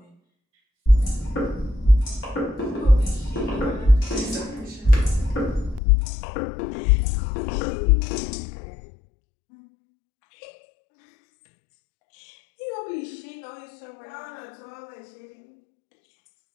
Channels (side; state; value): right; drops out; at 5.8 s